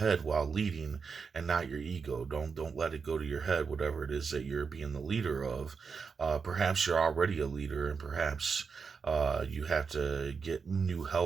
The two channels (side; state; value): left; quieter; 5.5 dB